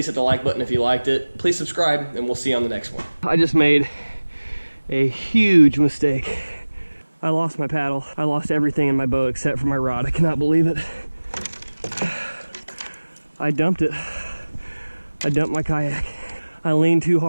hit the like button if you liked it. Please subscribe, and we'll see you on the next one. I just made a huge mistake. I lost my paddle. I lost everything in my boat except for my rod. I cannot believe it. I dumped it. I dumped my kayak. I leaned too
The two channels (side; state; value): both; inverted; correlation -1.00